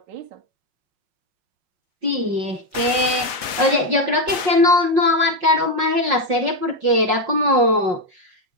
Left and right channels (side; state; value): left; late; 5.5 ms